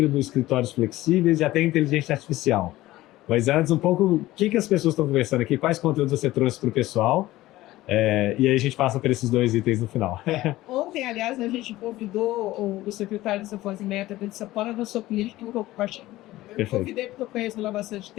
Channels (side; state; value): right; quieter; 16.8 dB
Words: escritórios flexíveis e até inteligência artificial. Mas antes, um pouco, o que as pessoas estão conversando aqui, quais conteúdos você trouxe para o pessoal, e aí a gente passa por esses 2 itens no final. Ontem, aliás, a gente convidou o secretário de Desenvolvimento de São Paulo, da sua política, que eu compartilho. Eu convidei porque eu conheço ele há bastante